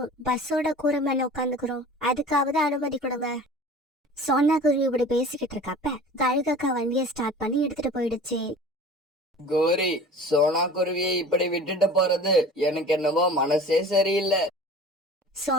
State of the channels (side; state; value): both; normal; correlation 0.41